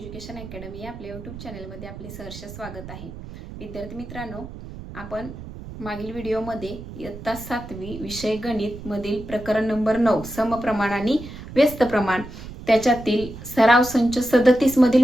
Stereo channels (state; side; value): noise; right; rumble, 12 dB below the sound